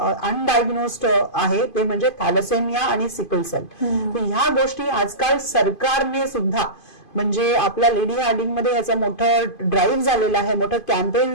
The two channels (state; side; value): late; right; 2.5 ms